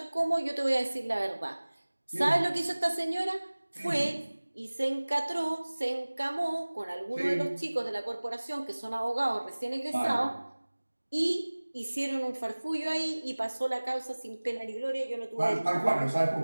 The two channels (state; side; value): inverted; both; correlation -1.00